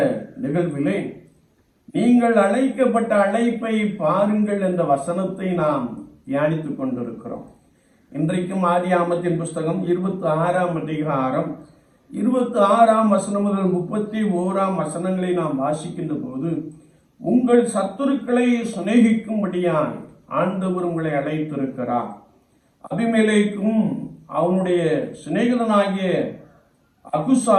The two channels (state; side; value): identical; both; correlation 1.00